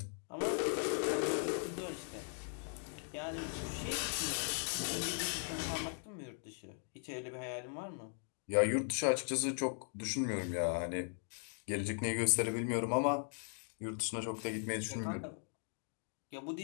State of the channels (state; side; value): silent; right; 52 dB below the other